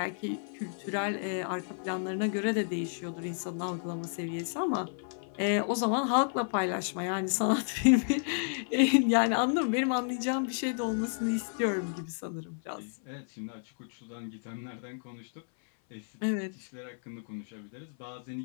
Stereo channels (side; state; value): right; silent; 57 dB below the other